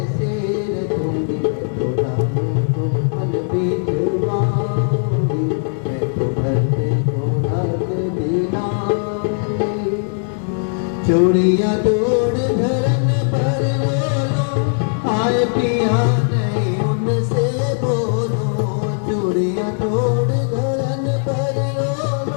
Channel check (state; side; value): silent; right; digital silence